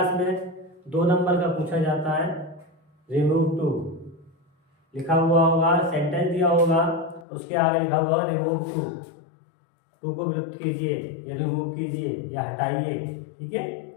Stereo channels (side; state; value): right; drops out; at 7.2 s